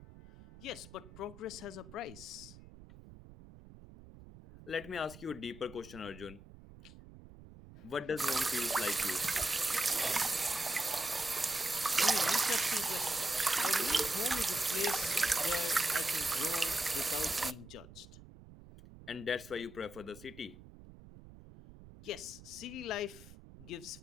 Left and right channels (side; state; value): right; noise; rumble, 18 dB below the sound